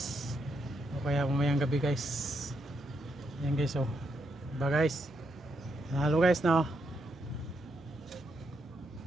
O kaya mamayang gabi guys. Yan guys, oh. Diba guys? Panalo guys, no?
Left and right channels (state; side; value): normal; both; correlation 0.79